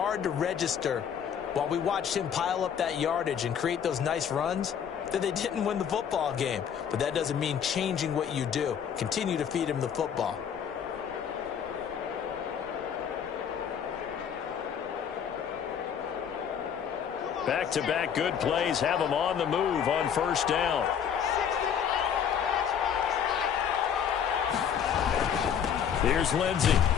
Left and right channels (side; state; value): right; quieter; 8.1 dB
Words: to register while we watched him pile up that yardage and create those nice runs that they didn't win the football game. But that doesn't mean changing what you do. Continue to feed him the football. Back-to-back good plays have them on the move on first down. Here's Lindsay